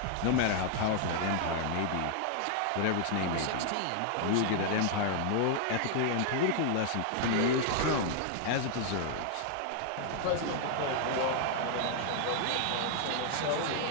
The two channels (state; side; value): different; both; correlation -0.01